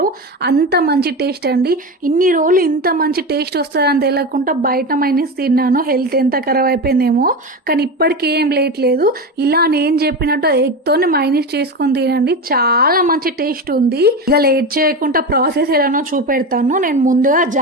అంత మంచి టేస్ట్ అండి. ఇన్ని రోజులు ఇంత మంచి టేస్ట్ వస్తుందని తెలియకుండా బయట మైనీస్ తిన్నాను. హెల్త్ ఎంత ఖరాబ్ అయిపోయిందేమో, కానీ ఇప్పటికీ ఏం లేదు. ఇలా నేను చెప్పినట్టు ఎగ్తోనే మైనీస్ చేసుకొని తినండి, చాలా మంచి టేస్ట్ ఉంది. ఇక లేట్ చేయకుండా ప్రాసెస్ ఎలానో చూపెడతాను. నేను ముందుగా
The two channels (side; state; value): both; normal; correlation 0.21